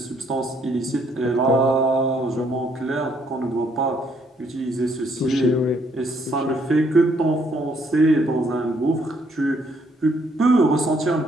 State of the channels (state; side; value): normal; both; correlation 0.69